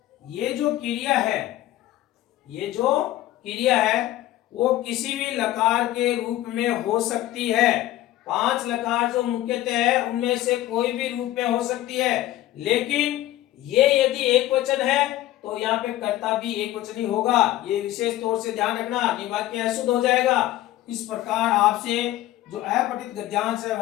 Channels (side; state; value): right; quieter; 14.8 dB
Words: ये जो क्रिया है, ये जो क्रिया है वो किसी भी लकार के रूप में हो सकती है। 5 लकार जो मुख्यतः है उनमें से कोई भी रूप में हो सकती है, लेकिन ये यदि एक वचन है तो यहाँ पे कर्ता भी एक वचनी होगा। ये विशेष तौर से ध्यान रखना, वाक्य अशुद्ध हो जाएगा। इस प्रकार आपसे जो अपठित गद्यांश है